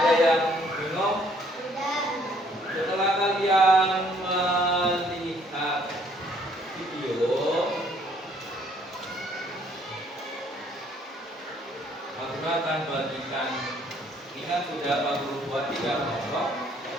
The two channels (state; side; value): normal; both; correlation 0.63